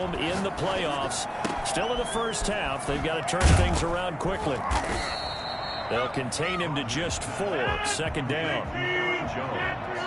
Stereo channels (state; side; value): identical; both; correlation 1.00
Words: in the playoffs. Still in the first half. They've got to turn things around quickly. They'll contain him to just 4. Second down.